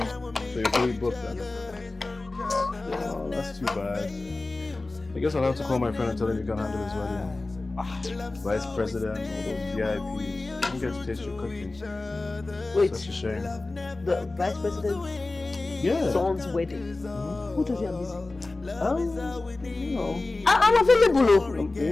you're fully booked then? Oh, that's too bad. I guess I'll have to call my friend and tell him you can handle his wedding. Vice president, all those VIPs. You don't get to taste your cooking. Wait, Such a shame. the vice president's Yeah. son's wedding. Who does he have busy? You know. I'm available. Are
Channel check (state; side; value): quieter; right; 3.2 dB